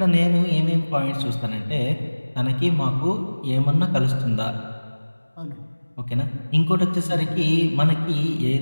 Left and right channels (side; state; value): both; inverted; correlation -1.00